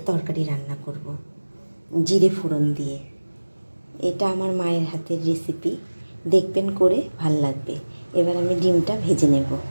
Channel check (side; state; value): both; inverted; correlation -1.00